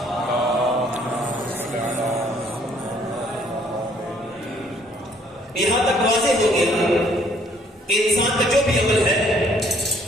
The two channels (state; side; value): normal; both; correlation 0.63